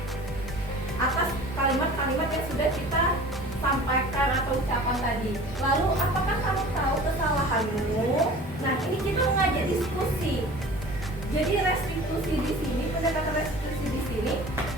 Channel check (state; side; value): normal; both; correlation 0.42